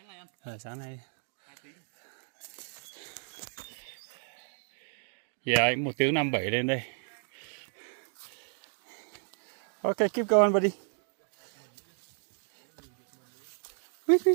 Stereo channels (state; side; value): silent; left; 56 dB below the other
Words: nay anh. Sáng nay. 2 tiếng. Yeah, 1 tiếng 57 lên đây. Okay, keep going, buddy. Wait,